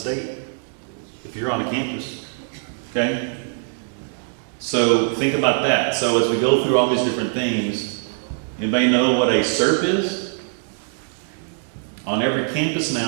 if you're on a campus, okay? So think about that. So as we go through all these different things, anybody know what a CERP is? On every campus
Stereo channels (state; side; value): silent; left; 62 dB below the other